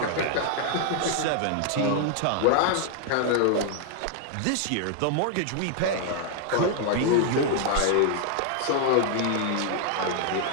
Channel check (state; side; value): different; both; correlation 0.00